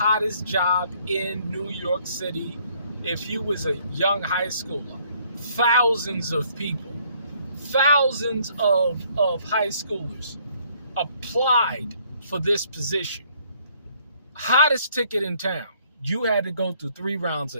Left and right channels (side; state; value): both; inverted; correlation -0.65